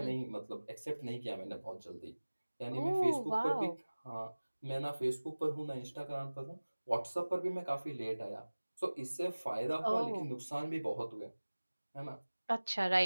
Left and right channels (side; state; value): both; inverted; correlation -1.00